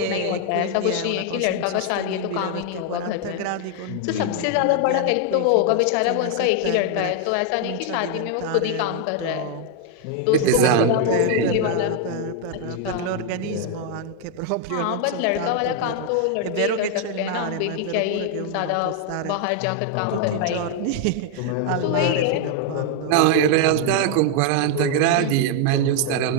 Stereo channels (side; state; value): both; different; correlation 0.00